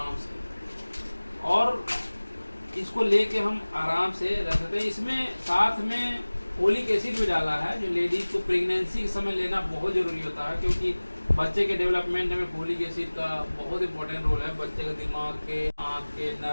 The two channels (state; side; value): inverted; both; correlation -1.00